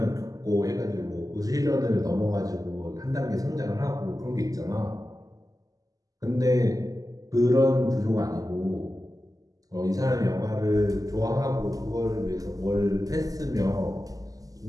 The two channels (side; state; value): left; late; 0.17 ms